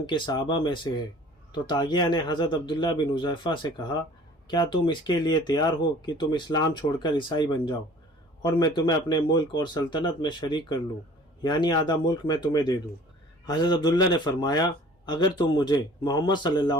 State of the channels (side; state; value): both; normal; correlation 0.49